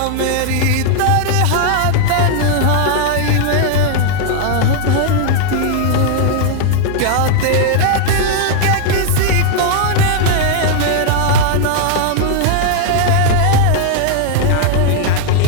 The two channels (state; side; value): different; both; correlation 0.00